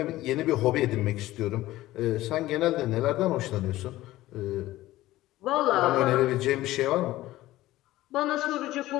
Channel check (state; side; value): quieter; right; 16.2 dB